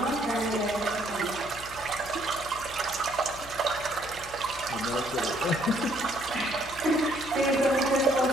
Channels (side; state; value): left; noise; hum, 17 dB below the sound